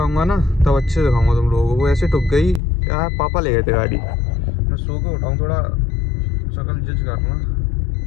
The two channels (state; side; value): drops out; right; at 2.6 s